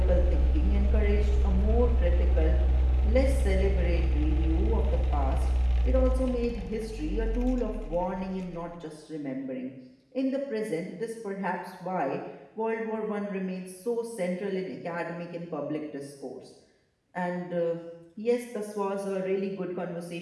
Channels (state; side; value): identical; both; correlation 1.00